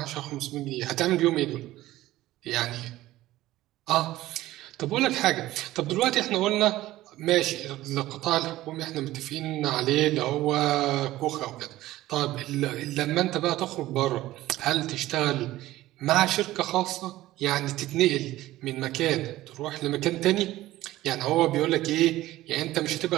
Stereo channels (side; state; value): left; quieter; 16.0 dB